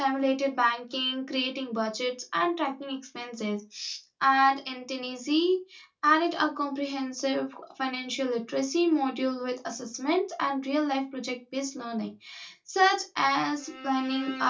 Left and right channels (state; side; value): identical; both; correlation 1.00